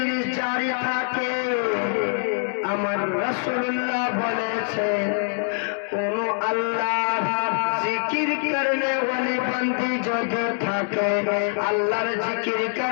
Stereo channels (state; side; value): silent; right; 56 dB below the other